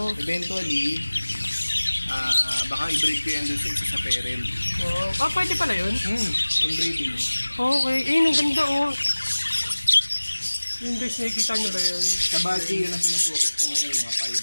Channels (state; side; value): inverted; both; correlation -1.00